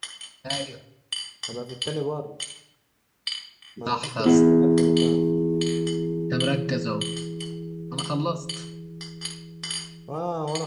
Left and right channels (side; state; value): both; identical; correlation 1.00